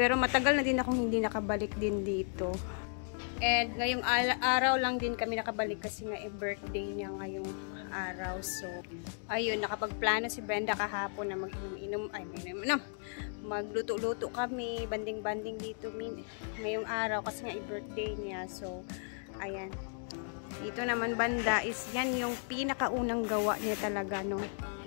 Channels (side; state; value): right; silent; 55 dB below the other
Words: matagal na din akong hindi nakabalik din dito. And ngayong araw lang din kami nakabalik kasi nga birthday niya ngayong araw. So, ayun, nakapagplano si Brenda kahapon na magluto-luto kami, banding-banding dito ngayong araw kasi nga birthday niya. So, ayan. Dito naman banda is yan yung pinakaunang gawa niya talaga, no?